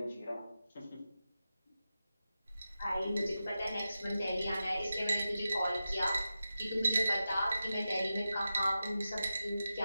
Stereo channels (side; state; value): both; inverted; correlation -0.92